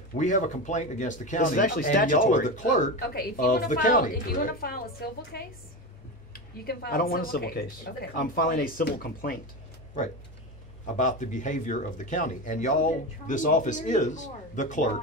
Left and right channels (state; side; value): normal; both; correlation 0.21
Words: We have a complaint against the county. This is actually and y'all are statutory. the clerk Okay, if you of wanna the file, county, if you wanna correct? file a civil case, you can file I don't want a civil case. Okay. I'm filing a civil complaint. Right. About the behavior of the county. And y'all, this office is the clerk